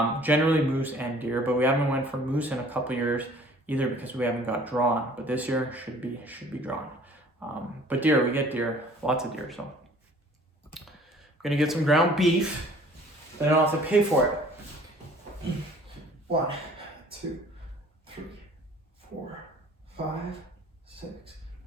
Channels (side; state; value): both; normal; correlation 0.52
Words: Generally moose and deer, but we haven't went for moose in a couple years either because we haven't got drawn. But this year should be drawn. But deer, we get deer, lots of deer. So I'm gonna get some ground beef. Then I don't have to pay for it. 1, 2, 3, 4, 5, 6,